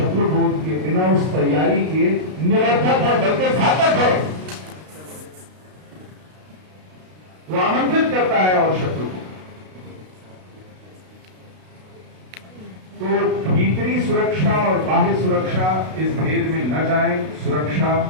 बोध के, बिना उस तैयारी के निरर्थक है, बल्कि घातक है। वो आमंत्रित करता है और शत्रु को। तो भीतरी सुरक्षा और बाह्य सुरक्षा, इस भेद में न जाएं। सुरक्षा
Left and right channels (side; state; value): left; late; 32 ms